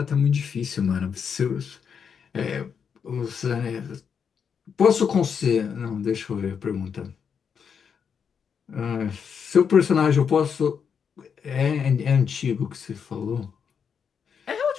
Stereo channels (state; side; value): quieter; right; 6.9 dB